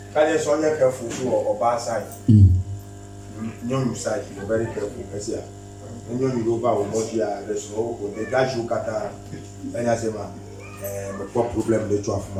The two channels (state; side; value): identical; both; correlation 1.00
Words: Can you so careful to or bad side? No side, you're very careful. I see. When you go over what you are, there's no the guys you got and I say, man, what problem they drop,